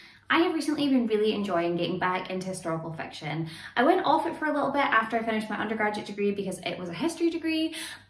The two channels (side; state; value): both; identical; correlation 1.00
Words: I have recently been really enjoying getting back into historical fiction. I went off it for a little bit after I finished my undergraduate degree because it was a history degree,